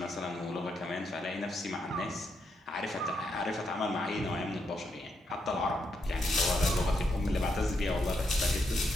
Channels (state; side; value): normal; both; correlation 0.80